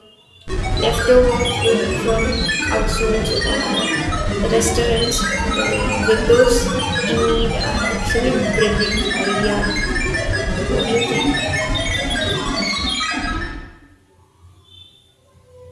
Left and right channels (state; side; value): identical; both; correlation 1.00